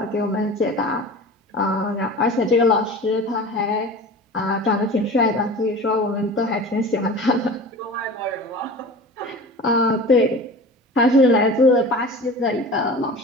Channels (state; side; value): normal; both; correlation 0.37